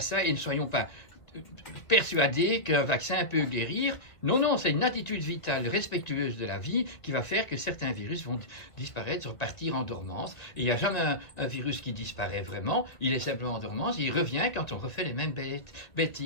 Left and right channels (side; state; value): right; late; 2.1 ms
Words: et ne soyons pas persuadés qu'un vaccin peut guérir. Non, c'est une attitude vitale respectueuse de la vie qui va faire que certains virus vont disparaître, repartir en dormance. Et il n'y a jamais un virus qui disparaît vraiment, il est simplement en dormance, et il revient quand on refait les mêmes